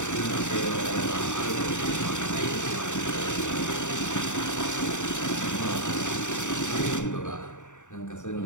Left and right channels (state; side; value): late; right; 0.85 ms